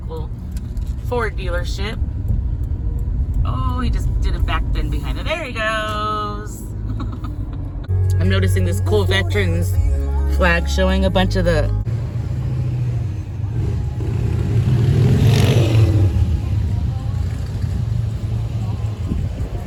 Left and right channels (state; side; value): identical; both; correlation 1.00